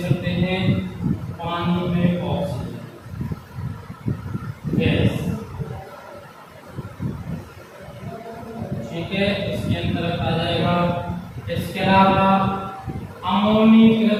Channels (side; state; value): both; identical; correlation 1.00